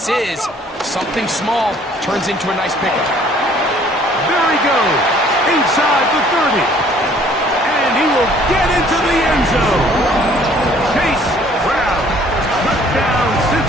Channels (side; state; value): both; normal; correlation 0.58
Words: is. Something small turns into a nice pickup. There he goes, inside the 30. And he will get into the end zone. Chase Brown, touchdown